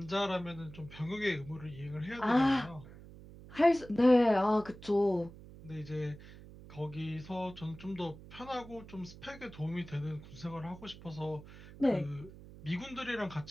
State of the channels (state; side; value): noise; right; hum, 17 dB below the sound